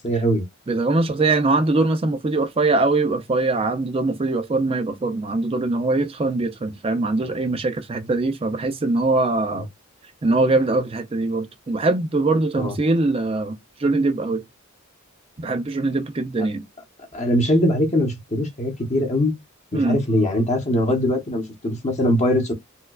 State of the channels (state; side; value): normal; both; correlation 0.56